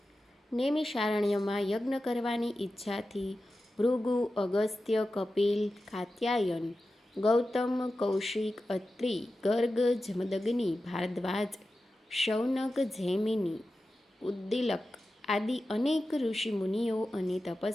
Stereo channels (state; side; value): normal; both; correlation 0.93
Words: નેમિષારણ્યમાં યજ્ઞ કરવાની ઈચ્છાથી ભૃગુ, અગસ્ત્ય, કપિલ, કાત્યાયન, ગૌતમ, કૌશિક, અત્રિ, ગર્ગ, જમદગ્નિ, ભારદ્વાજ, શૌનક, જૈમિની, ઉદ્દીલક આદિ અનેક ઋષિમુનિઓ અને